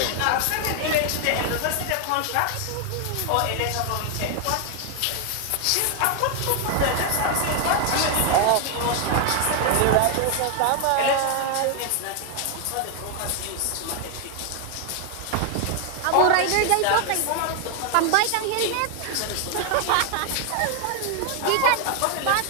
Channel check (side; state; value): both; different; correlation 0.00